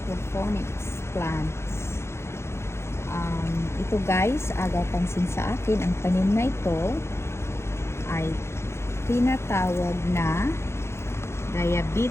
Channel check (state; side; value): late; right; 0.13 ms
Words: plants. Ito guys, agaw pansin sa akin, ang tanim na ito ay tinatawag na